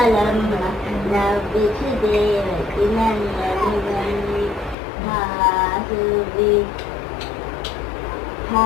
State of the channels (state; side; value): drops out; right; at 4.8 s